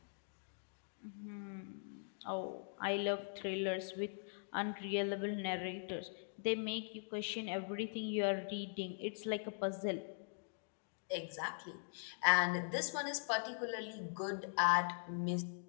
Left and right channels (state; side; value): silent; right; digital silence